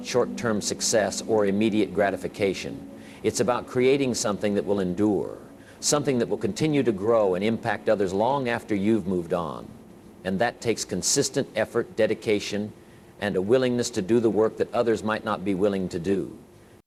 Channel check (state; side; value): identical; both; correlation 1.00